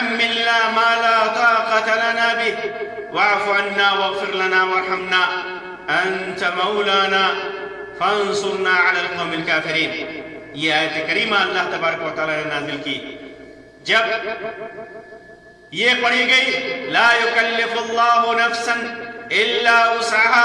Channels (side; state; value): both; identical; correlation 1.00